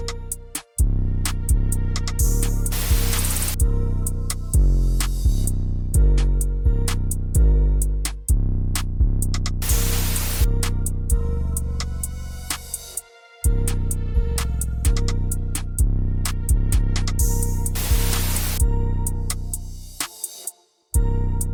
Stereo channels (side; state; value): both; identical; correlation 1.00